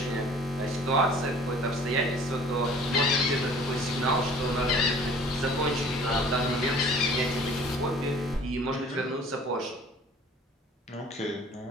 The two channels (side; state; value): both; normal; correlation 0.49